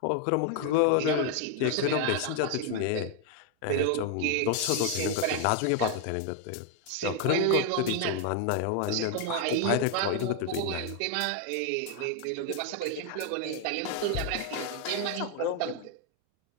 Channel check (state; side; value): different; both; correlation 0.01